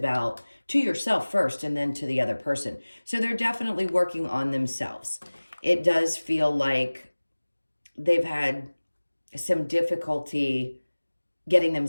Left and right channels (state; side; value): inverted; both; correlation -1.00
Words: to yourself first and then to the other person. So they're definitely working on themselves. It does feel like they've had some difficulty getting